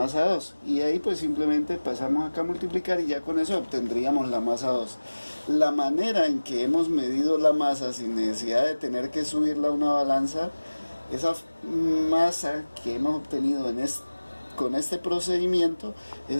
2, y ahí pues simplemente pasamos acá a multiplicar y ya con eso obtendríamos la masa 2. La manera en que hemos medido la masa sin necesidad de tener que subirla a una balanza, esa masa que hemos obtenido con este procedimiento,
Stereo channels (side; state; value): both; inverted; correlation -1.00